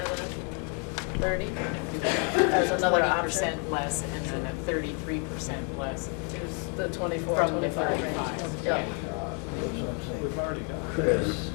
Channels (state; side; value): quieter; right; 38.9 dB